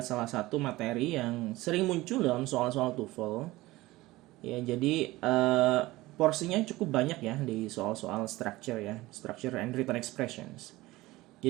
salah satu materi yang sering muncul dalam soal-soal TOEFL. Ya, jadi porsinya cukup banyak ya di soal-soal structure ya, structure and written expressions.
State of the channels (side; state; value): left; quieter; 18.9 dB